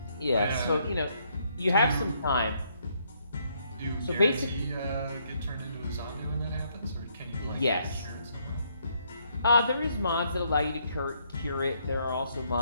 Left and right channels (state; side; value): inverted; both; correlation -0.72